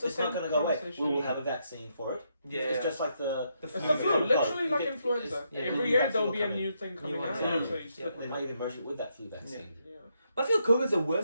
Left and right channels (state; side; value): inverted; both; correlation -0.78